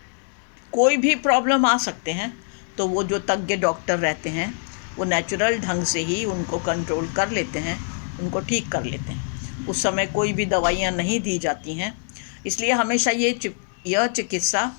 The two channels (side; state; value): right; silent; 63 dB below the other